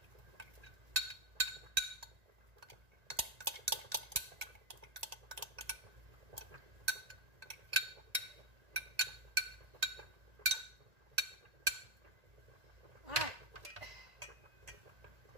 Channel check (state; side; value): late; left; 1.8 ms